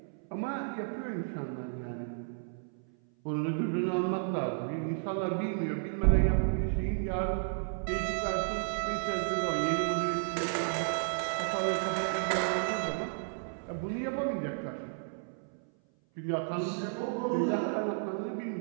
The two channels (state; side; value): silent; left; 56 dB below the other